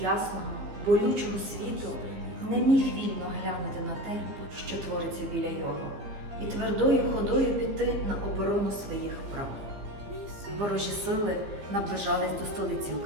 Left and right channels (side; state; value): left; late; 15 ms